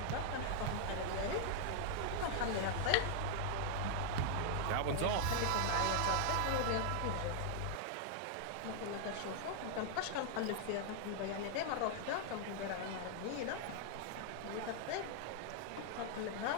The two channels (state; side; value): different; both; correlation 0.00